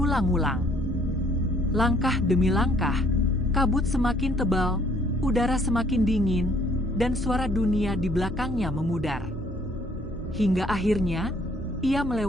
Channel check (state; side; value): normal; both; correlation 0.62